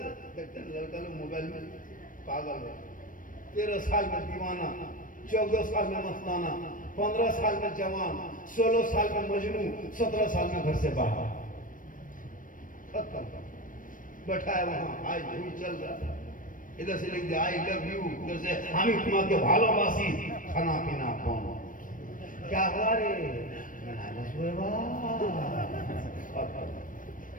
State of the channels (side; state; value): right; late; 0.39 ms